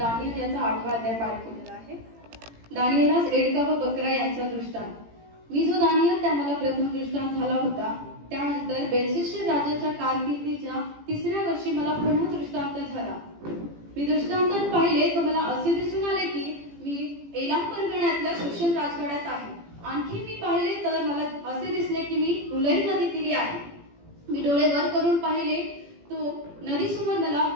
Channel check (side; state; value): left; late; 18 ms